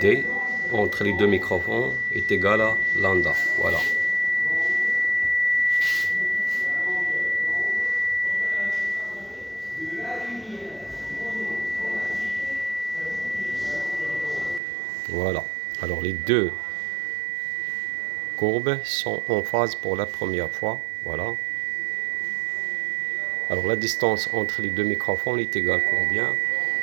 entre les deux microphones est égale à lambda. Voilà. Voilà. Alors les deux courbes sont en phase pour la première fois. Voilà. Alors la distance entre les deux microphones est égale combien?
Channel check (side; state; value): left; drops out; at 14.6 s